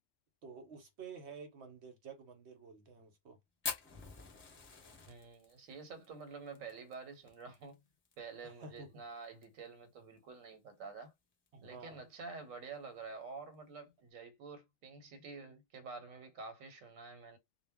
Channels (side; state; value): both; normal; correlation -0.03